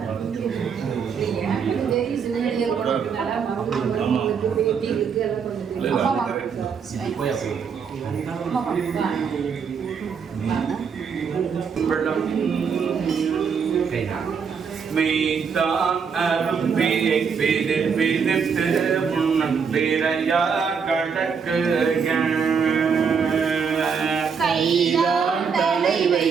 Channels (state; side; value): quieter; left; 6.2 dB